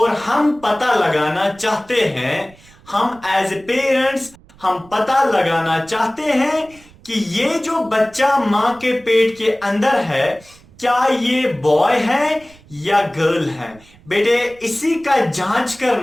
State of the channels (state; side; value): noise; right; rumble, 26 dB below the sound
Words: हम पता लगाना चाहते हैं, हम एज ए पेरेंट्स हम पता लगाना चाहते हैं कि ये जो बच्चा मां के पेट के अंदर है क्या ये बॉय है या गर्ल है। बेटे इसी का जांच